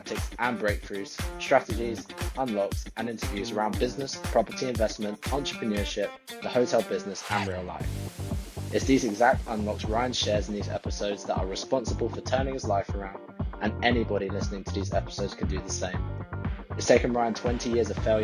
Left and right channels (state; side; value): identical; both; correlation 1.00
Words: and breakthroughs, strategies, unlocks and interviews around business, property investment, entrepreneurship, the hotel business and real life. It's these exact unlocks Ryan shares in these episodes that are responsible for turning his life around, and anybody listening to these episodes can do the same. It's taken Ryan 20 years of